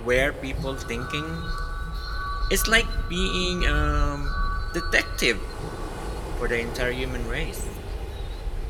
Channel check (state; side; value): identical; both; correlation 1.00